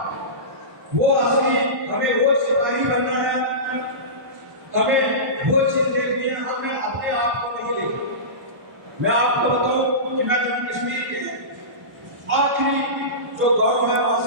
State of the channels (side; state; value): left; late; 1.1 ms